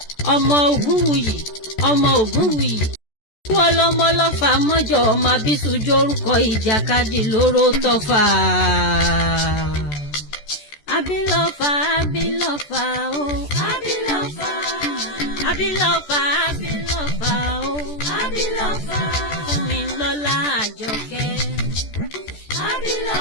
ọmọ Ògúnwùyí, ọmọ Ògúnwùyí. Wọ́n lọ́mọ lọ́fà mọ́jọ ọmọ Abísújó orúkọ ìjàkadì lóró tọ́fà. Abilọ́fà, Abilọ́fà o, Abilọ́fà, Abilọ́fà, Abilọ́fà o, Abilọ́fà. Fúnmilọ́lá Àjọkẹ́,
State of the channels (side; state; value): right; late; 14 ms